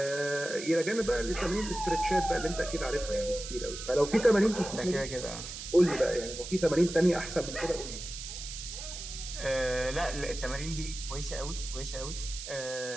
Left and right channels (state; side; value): noise; right; hiss, 9 dB below the sound